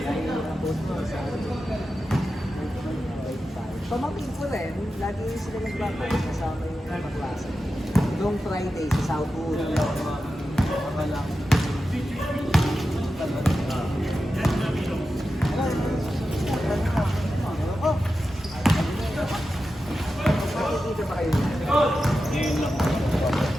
Pamangkin ko rin, lagi sila nagbabalik kasama yung mga klase. Noong Friday sa Southwood. Nakikita ba kayo?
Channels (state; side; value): normal; both; correlation 0.91